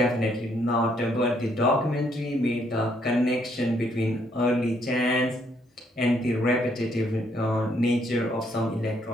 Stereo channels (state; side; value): normal; both; correlation 0.70